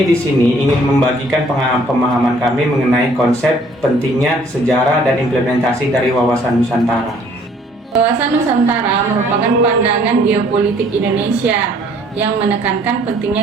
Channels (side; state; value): both; normal; correlation 0.59